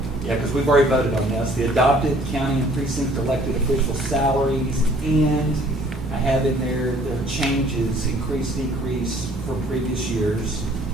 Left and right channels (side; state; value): both; normal; correlation 0.58